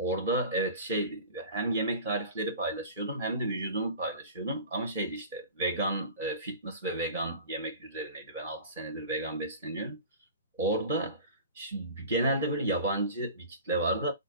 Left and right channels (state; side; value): inverted; both; correlation -0.38